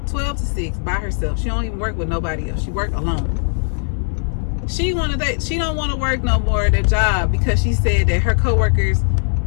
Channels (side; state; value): right; silent; 66 dB below the other